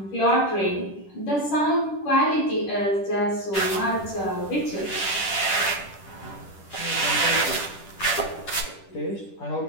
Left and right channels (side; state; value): right; late; 10 ms